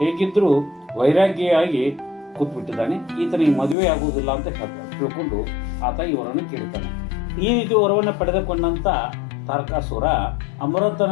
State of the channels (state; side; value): drops out; right; at 3.8 s